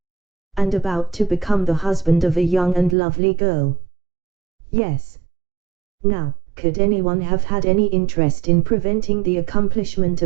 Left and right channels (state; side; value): drops out; left; at 3.0 s